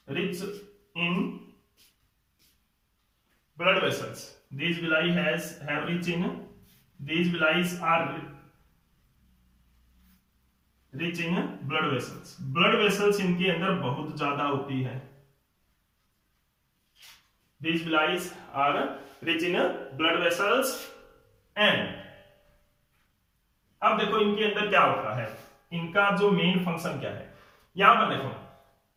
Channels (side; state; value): both; identical; correlation 1.00